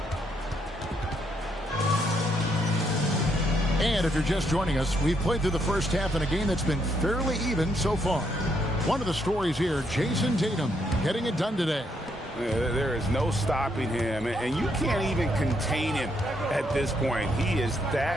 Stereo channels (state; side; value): normal; both; correlation 0.75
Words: And if you're just joining us, we've played through the first half in a game that's been fairly even so far. One of the stories here, Jason Tatum getting it done today. There is no stopping him, and you can't even contain him at this point. He is